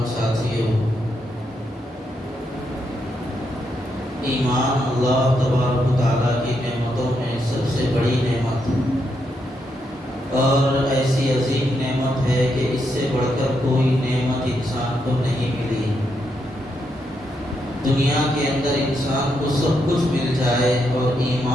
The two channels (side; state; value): both; normal; correlation 0.80